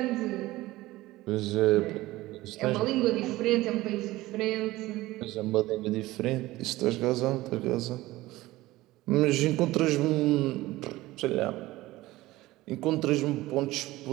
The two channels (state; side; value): quieter; left; 18.0 dB